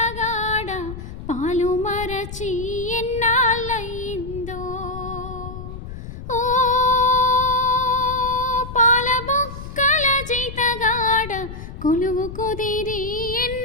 పాలు మరచి ఎన్నాళ్ళయిందో. ఓ పాల బొక్కల జీతగాడ కొలువు కుదిరి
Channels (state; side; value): noise; left; rumble, 11 dB below the sound